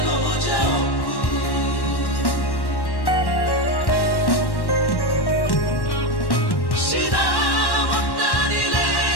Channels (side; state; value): right; late; 1.1 ms